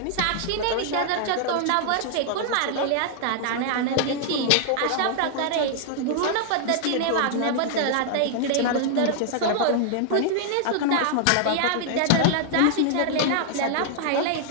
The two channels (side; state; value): both; different; correlation -0.01